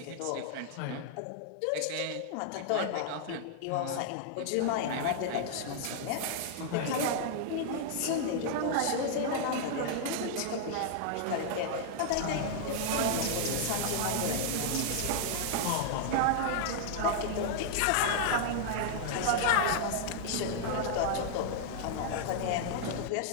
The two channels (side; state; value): both; different; correlation 0.00